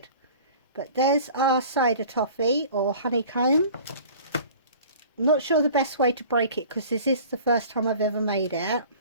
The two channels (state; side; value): inverted; both; correlation -0.45